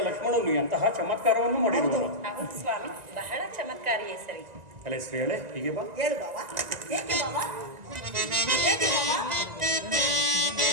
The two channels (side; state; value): left; late; 1.9 ms